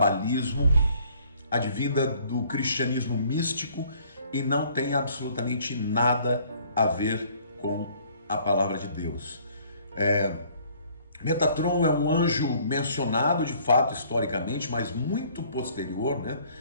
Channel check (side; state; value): both; inverted; correlation -0.59